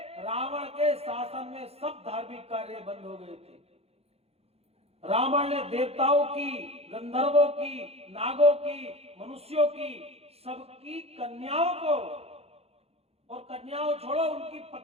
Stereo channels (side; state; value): left; late; 0.29 ms